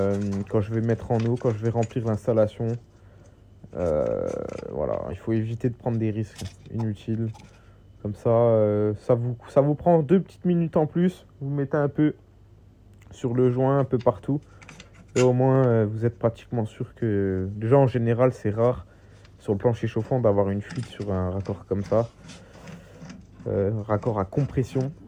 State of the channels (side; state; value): both; identical; correlation 1.00